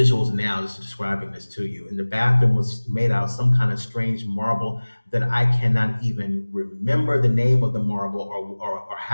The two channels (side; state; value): both; inverted; correlation -1.00